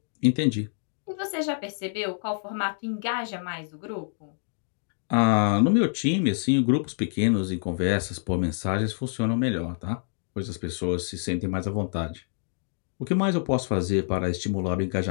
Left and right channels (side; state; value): right; silent; 56 dB below the other